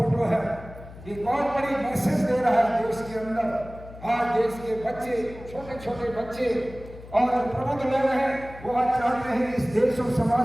है, ये बहुत बड़ी मैसेज दे रहा है देश के अंदर। आज देश के बच्चे, छोटे छोटे बच्चे और प्रबुद्ध लोग हैं, वो आज चाहते हैं इस देश और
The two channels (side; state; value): left; noise; hum, 16 dB below the sound